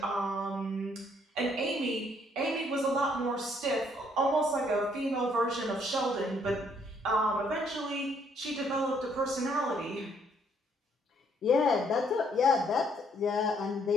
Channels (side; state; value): both; normal; correlation 0.67